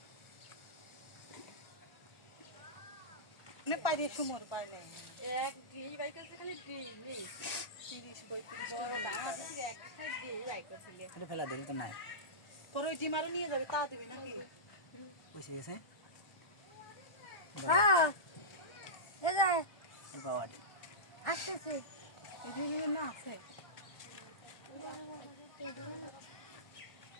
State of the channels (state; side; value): late; right; 1.4 ms